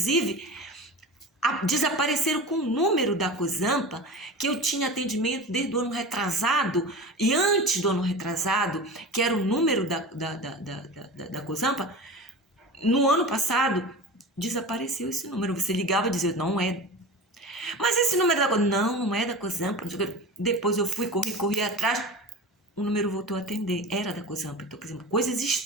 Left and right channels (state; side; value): normal; both; correlation 0.31